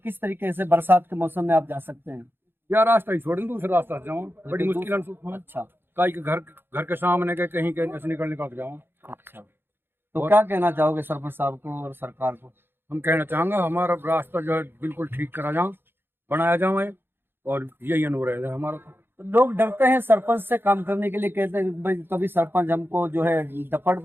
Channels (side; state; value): left; late; 0.10 ms